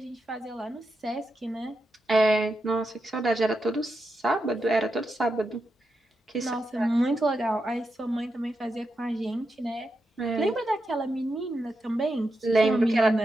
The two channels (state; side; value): normal; both; correlation 0.86